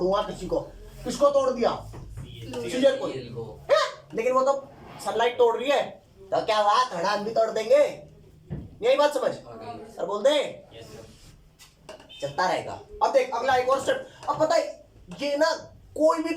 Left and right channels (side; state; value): both; identical; correlation 1.00